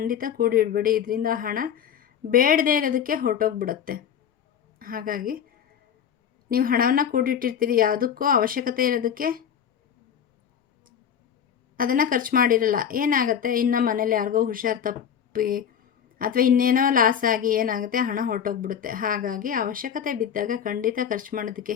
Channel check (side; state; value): right; quieter; 8.5 dB